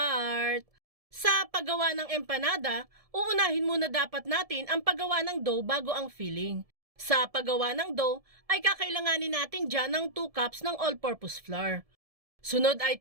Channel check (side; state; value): left; late; 1.7 ms